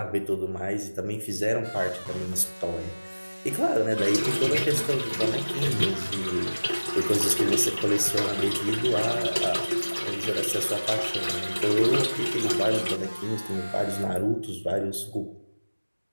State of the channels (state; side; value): inverted; both; correlation -1.00